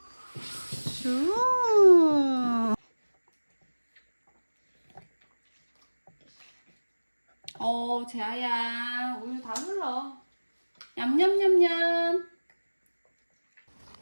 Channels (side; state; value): both; inverted; correlation -1.00